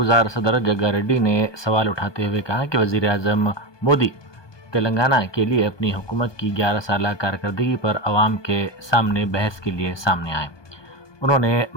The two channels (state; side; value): late; right; 1.2 ms